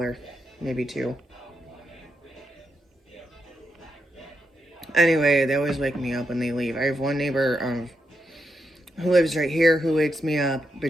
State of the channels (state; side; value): normal; both; correlation 0.84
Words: maybe two. Anyway, they always wake me up when they leave. I have one neighbor who lives right here who wakes me up